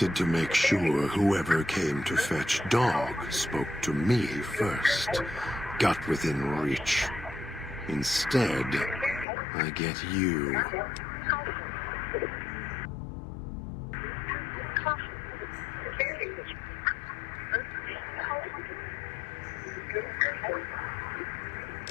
to make sure whoever came to fetch Dog spoke to me first. Got within reach. Instead, I get you.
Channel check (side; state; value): right; drops out; at 9.2 s